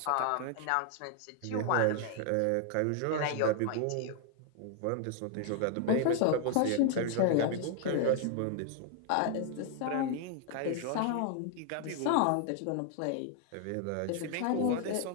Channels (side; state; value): both; different; correlation 0.00